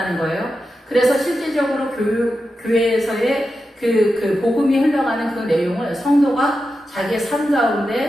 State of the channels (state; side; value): normal; both; correlation 0.90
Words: 거예요. 그래서 실제적으로 교회에서의 그 복음이 흘러가는 그 내용을 성도가 자기의 삶